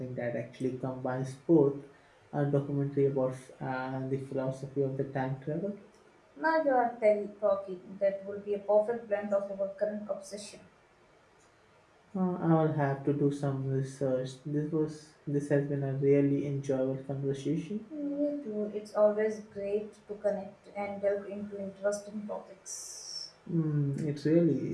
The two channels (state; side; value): identical; both; correlation 1.00